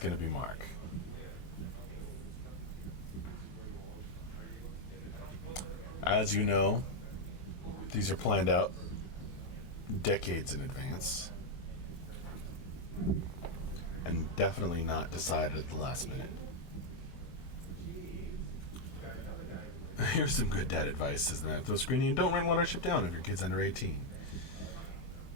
to be Mark. As you know, these are planned out decades in advance. And definitely not decided at the last minute. Here's some good dad advice, says the man with no screen name. Don't rent Watership Down if your kid's under 18.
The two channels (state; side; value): late; right; 23 ms